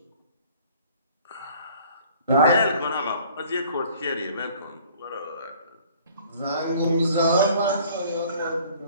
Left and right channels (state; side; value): inverted; both; correlation -0.53